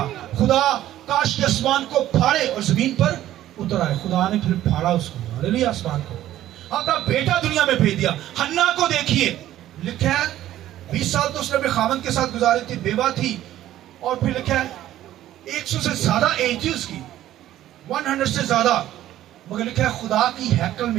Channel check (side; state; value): left; quieter; 13.3 dB